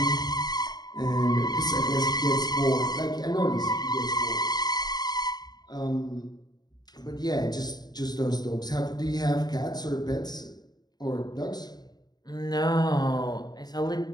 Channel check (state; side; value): late; right; 0.20 ms